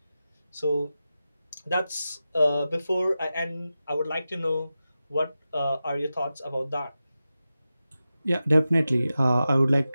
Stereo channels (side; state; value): both; inverted; correlation -0.93